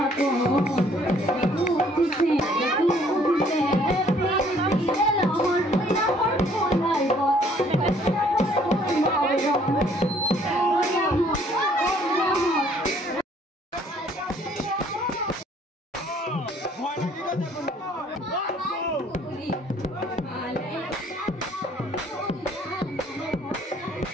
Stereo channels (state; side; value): normal; both; correlation 0.60